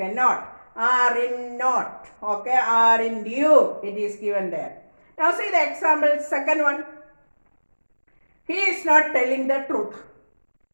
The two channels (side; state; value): both; inverted; correlation -1.00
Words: not. Are in not. Okay, are in you. It is given there. Now see the example, second one. He is not telling the truth.